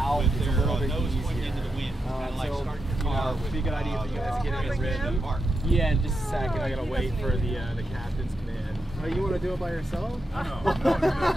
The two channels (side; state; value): both; normal; correlation 0.86